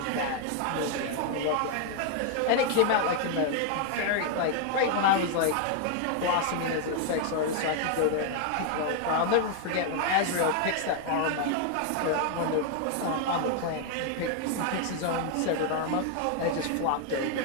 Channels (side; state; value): both; different; correlation 0.00